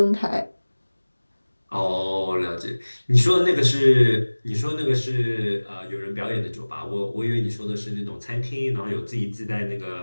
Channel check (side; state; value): both; inverted; correlation -1.00